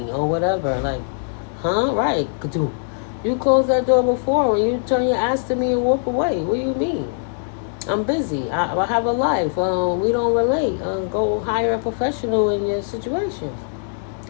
or whatever. Like, huh? Right. You closed that door before when you turn your ass to me and walk away. What do you mean? I'm busy. I have a life. We don't relate. Go hire a professional in your situation.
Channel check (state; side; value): silent; right; digital silence